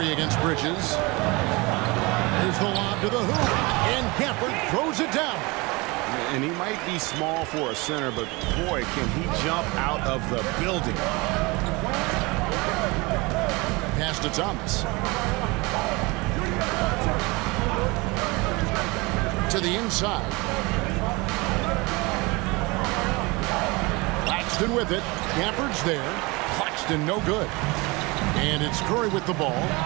against Bridges. Here's the lob to the hoop. And Gafford throws it down. And he might be small for a center, but boy, can he jump out of the building. Pass to Thomas. To the inside. Claxton with it. Gafford's there. Claxton no good. And it's Curry with the ball,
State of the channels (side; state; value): left; quieter; 25.0 dB